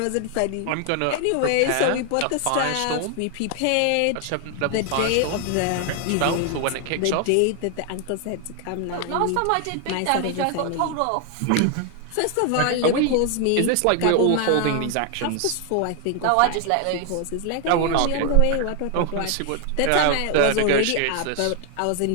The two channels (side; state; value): both; different; correlation 0.00